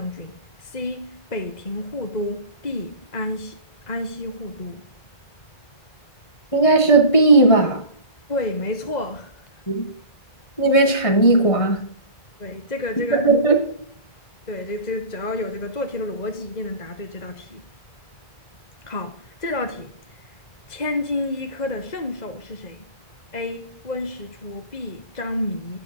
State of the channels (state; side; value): late; right; 1.6 ms